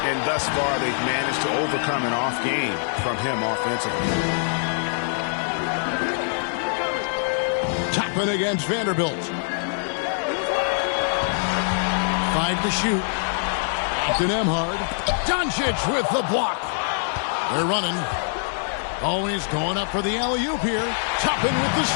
And thus far, they've managed to overcome an off game from him offensively. Toppin against Vanderbilt. 5 to shoot. Captain Emhard. Doncic with the block. They're running. Oh, he's going up for the alley-oop here. Toppin with the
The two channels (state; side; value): silent; right; 62 dB below the other